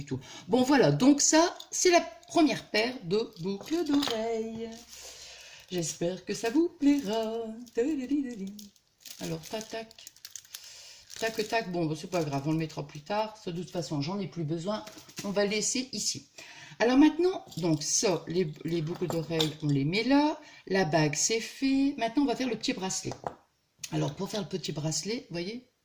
tout. Bon, voilà, donc ça, c'est la première paire de boucles d'oreilles. J'espère que ça vous plaira. Alors, tac, tac. Tac, tac. Bon, c'est pas grave, on le mettra plus tard. De toute façon, j'en ai plus besoin. On va le laisser ici. Alors maintenant, donc ça, les boucles d'oreilles, on les met là. La bague, c'est fait. Maintenant, on va faire le petit bracelet. Alors, pour faire le petit bracelet, vous voyez,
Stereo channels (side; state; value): both; identical; correlation 1.00